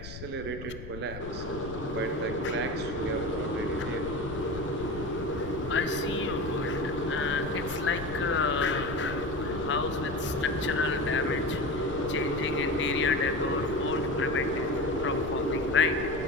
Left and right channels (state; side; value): noise; left; rumble, 11 dB below the sound